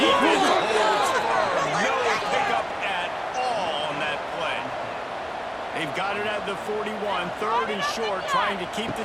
holds firm. No pickup at all on that play. They've got it at the 41. Third and short, trying to keep the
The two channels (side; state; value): both; identical; correlation 1.00